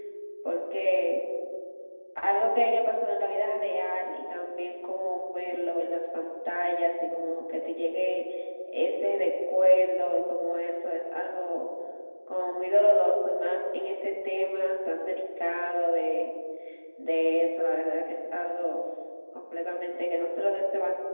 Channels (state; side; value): inverted; both; correlation -1.00